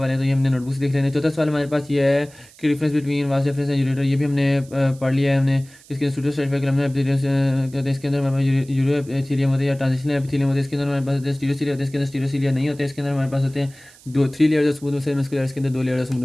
हैं, तो ये हमने नोटबुक से देख लेने। चौथा सवाल हमारे पास ये है कि difference between vast reference and ureter. ये भी हमने पढ़ लिया है हमने। इसके स्टूडियो सर्टिफाइड कलम कहते हैं। इसके अंदर हमारे पास यूरो एपिथेलियम होते हैं या ट्रांजिशनल एपिथेलियम होते हैं। इसके अंदर हमारे पास स्टीरियोसीलिया होते हैं, इसके अंदर स्टीरियोसीलिया नहीं होते। इसके अंदर हमारे पास होते हैं 3 layers of smooth muscle muscular, इसके अंदर 2 layers of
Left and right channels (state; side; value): noise; right; hiss, 24 dB below the sound